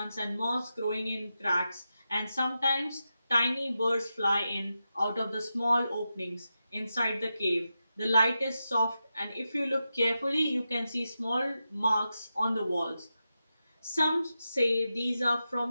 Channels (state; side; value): inverted; both; correlation -0.90